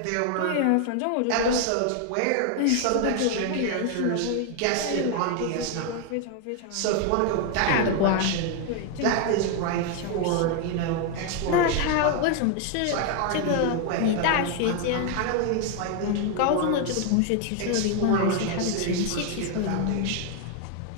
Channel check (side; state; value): both; different; correlation 0.00